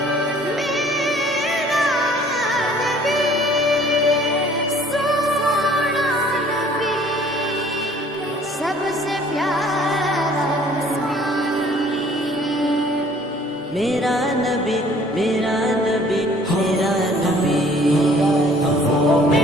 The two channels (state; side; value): normal; both; correlation 0.55